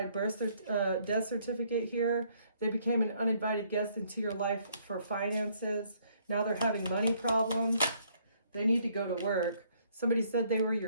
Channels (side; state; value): both; inverted; correlation -0.66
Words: death certificate here. They became an uninvited guest into your life for finances. Now they're having money problems. They need to go to work. Somebody said they were